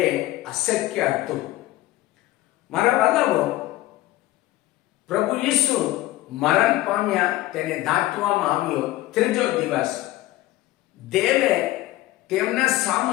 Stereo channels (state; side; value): quieter; right; 16.6 dB